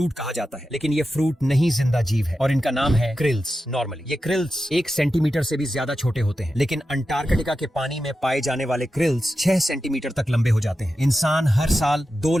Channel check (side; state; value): both; normal; correlation 0.91